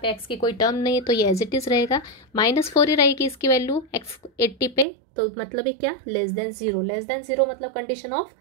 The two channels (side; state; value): left; drops out; at 4.9 s